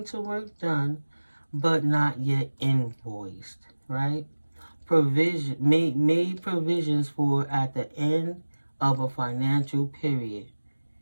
to work done but not yet invoiced, right? Provision made provisions for at the end of a financial period.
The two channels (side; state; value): both; inverted; correlation -1.00